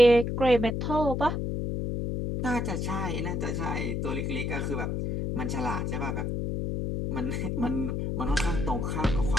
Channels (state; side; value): noise; left; hum, 1 dB below the sound